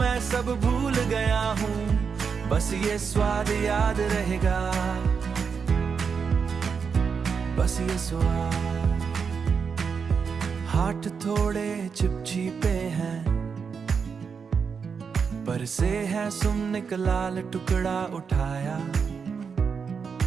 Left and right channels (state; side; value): quieter; left; 6.0 dB